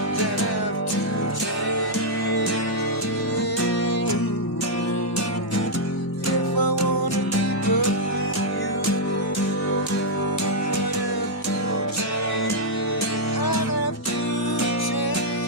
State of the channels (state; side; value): normal; both; correlation -0.05